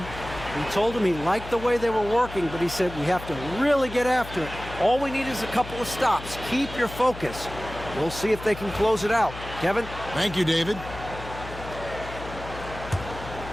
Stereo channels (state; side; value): noise; left; hum, 12 dB below the sound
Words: He told him he liked the way they were working, but he said we have to really get after it. All we need is a couple of stops. Keep your focus. We'll see if they can close it out. Kevin? Thank you, David.